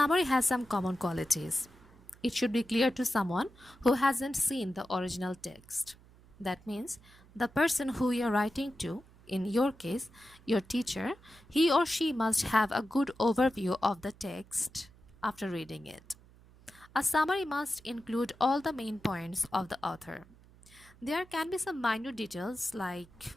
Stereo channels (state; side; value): noise; right; hum, 25 dB below the sound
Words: has some common qualities. It should be clear to someone who hasn't seen the original text. That means the person who you're writing to, in your case, your teacher, he or she must have a good overview of the text after reading it. A summary must include all the main points of the author. There can be some minor details like